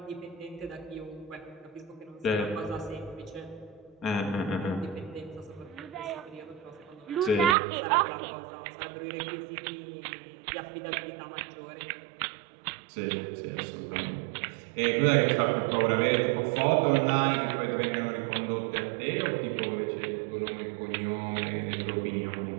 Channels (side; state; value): left; drops out; at 7.6 s